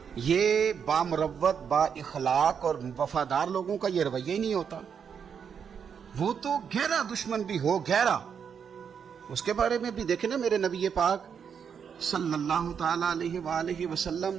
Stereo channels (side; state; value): left; quieter; 7.2 dB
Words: یہ بامروت با اخلاق اور وفادار لوگوں کا یہ رویہ ہی نہیں ہوتا. وہ تو گہرا دشمن بھی ہو گہرا. اس کے بارے میں بھی دیکھیں نا میرے نبی پاک صلی اللہ تعالی علیہ وآلہ وسلم